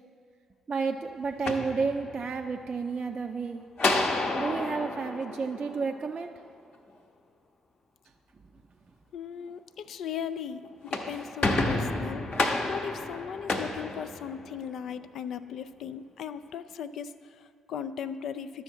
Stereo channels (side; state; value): both; normal; correlation 0.73